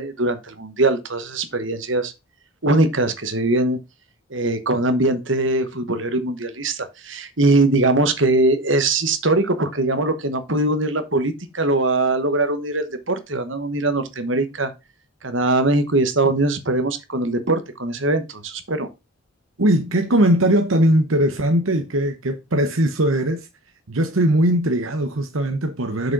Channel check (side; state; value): both; normal; correlation 0.26